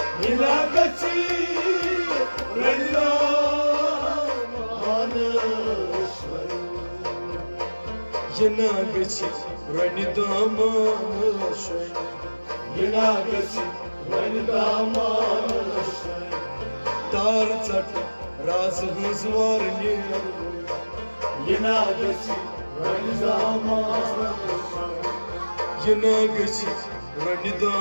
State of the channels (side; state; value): both; inverted; correlation -1.00